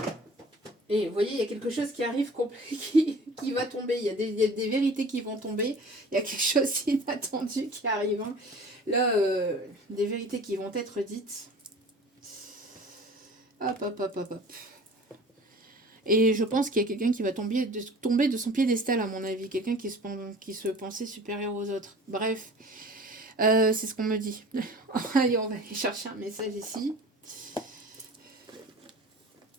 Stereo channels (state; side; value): normal; both; correlation 0.43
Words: Et vous voyez, il y a quelque chose qui arrive, qui va tomber. Il y a des vérités qui vont tomber. Il y a quelque chose d'inattendu qui arrive. Hein. Là, des vérités qui vont être dites. Hop. Et je pense qu'il y a quelqu'un qui va tomber de son piédestal, à mon avis. Quelqu'un qui se pensait supérieur aux autres. Bref, c'est ce qu'on me dit. Allez, on va aller chercher un message ici.